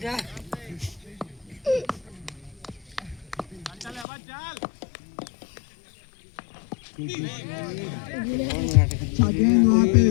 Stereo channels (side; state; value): right; drops out; at 4.0 s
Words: अच्छा गेंद वहां पे